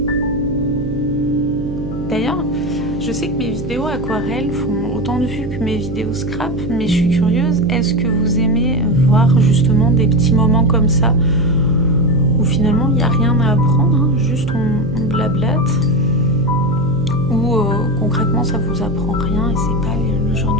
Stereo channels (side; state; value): right; noise; hum, 8 dB below the sound